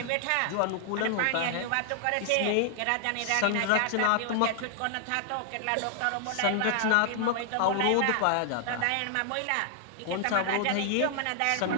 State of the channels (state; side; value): different; both; correlation 0.00